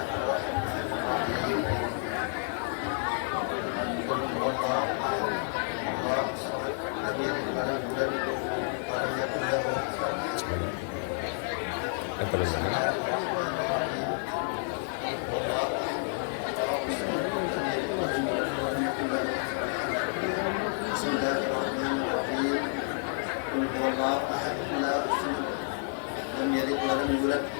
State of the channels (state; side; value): silent; right; 58 dB below the other